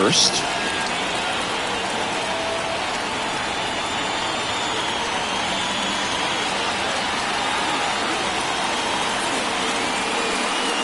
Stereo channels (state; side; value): identical; both; correlation 1.00